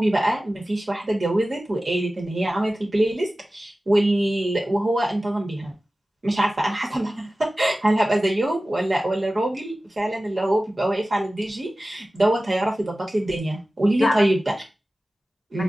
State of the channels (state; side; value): normal; both; correlation 0.96